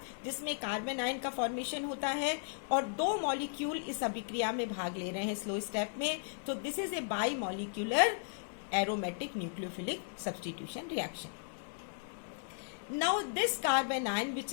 जिसमें कार्बन आयन का फॉर्मेशन होता है और 2 मॉलिक्यूल इस अभिक्रिया में भाग ले रहे हैं स्लो स्टेप में। तो this is a bimolecular aromatic nucleophilic substitution reaction. Now this carbon ion which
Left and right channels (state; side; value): silent; right; 54 dB below the other